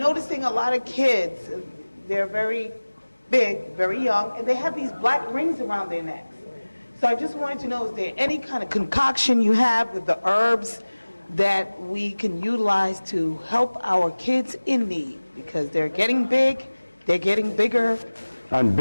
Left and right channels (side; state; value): both; inverted; correlation -1.00